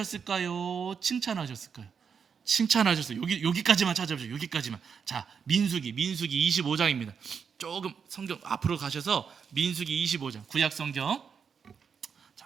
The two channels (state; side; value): quieter; left; 6.5 dB